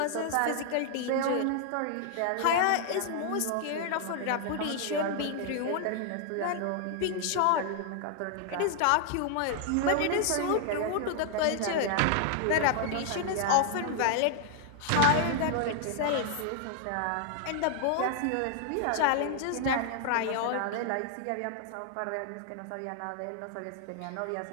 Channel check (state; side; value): different; both; correlation 0.00